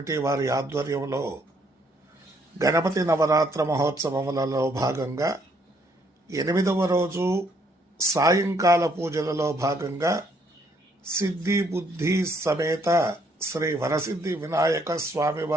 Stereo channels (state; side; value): normal; both; correlation 0.69